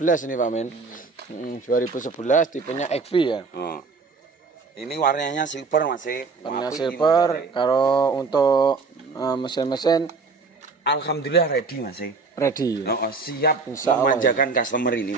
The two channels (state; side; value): quieter; left; 4.3 dB